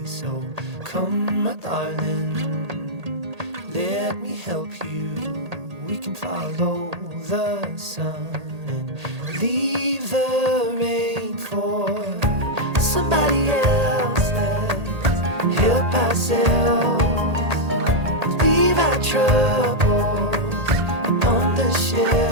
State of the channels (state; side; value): late; left; 1.8 ms